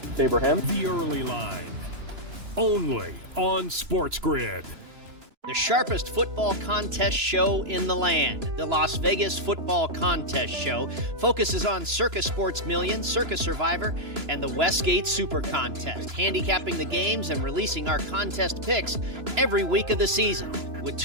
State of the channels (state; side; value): late; left; 2.9 ms